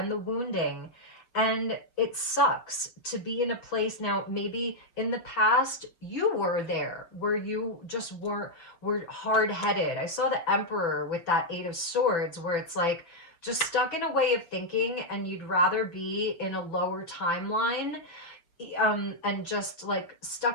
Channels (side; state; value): right; late; 5.9 ms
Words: the wounding. And it sucks to be in a place now. Maybe in the past you were there where you just were hard-headed. I saw the Emperor with that Eight of Swords, where it's like just stuck in a way of thinking, and you'd rather be in a lower timeline, and just like